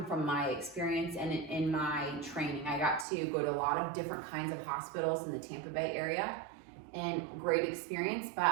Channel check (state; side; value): drops out; left; at 3.1 s